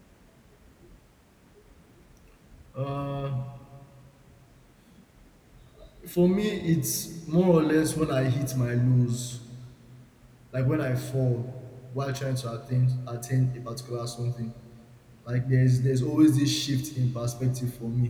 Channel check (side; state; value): both; identical; correlation 1.00